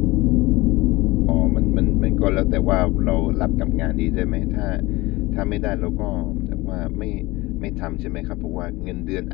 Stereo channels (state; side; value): quieter; right; 21.0 dB